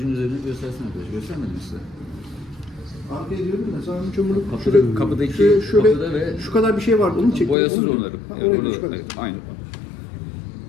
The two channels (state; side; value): drops out; right; at 7.6 s